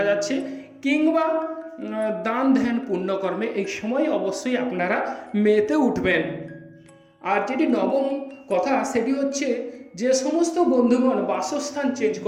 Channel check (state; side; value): identical; both; correlation 1.00